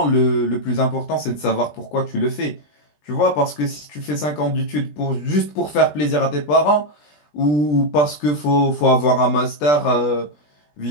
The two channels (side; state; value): right; late; 20 ms